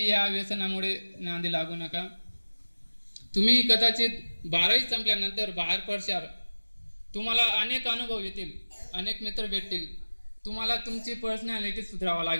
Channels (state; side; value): inverted; both; correlation -1.00